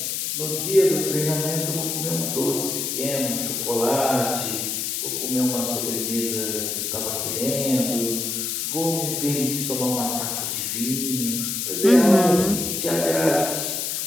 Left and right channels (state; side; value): noise; left; hiss, 2 dB below the sound